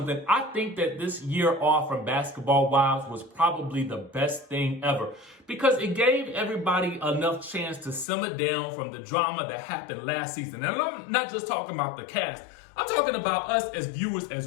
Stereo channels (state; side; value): drops out; right; at 8.1 s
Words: I think that this year off from Basketball Wives was probably the best thing ever because it gave everybody enough chance to simmer down from the drama that happened last season. And I'm not just talking about the cast. I'm talking about us as viewers